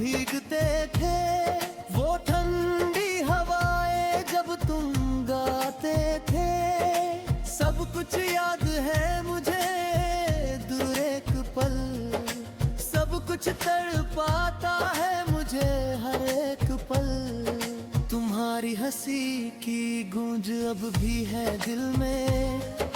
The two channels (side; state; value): both; identical; correlation 1.00